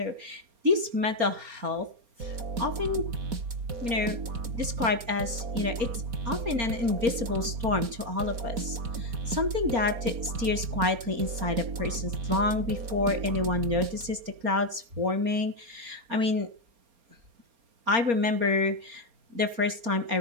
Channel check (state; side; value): late; left; 4.3 ms